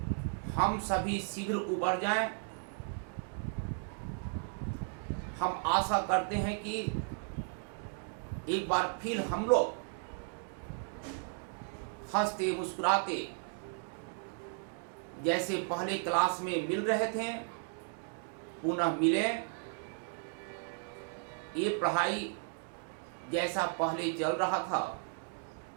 हम सभी शीघ्र उबर जाएं। हम आशा करते हैं कि एक बार फिर हम लोग हंसते मुस्कुराते जैसे पहले क्लास में मिल रहे थे पुनः मिलें। ये पढ़ाई जैसा पहले चल रहा था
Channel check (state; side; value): silent; left; 54 dB below the other